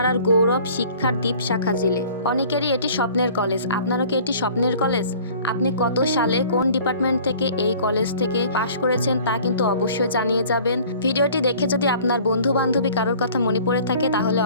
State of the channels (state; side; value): inverted; both; correlation -0.49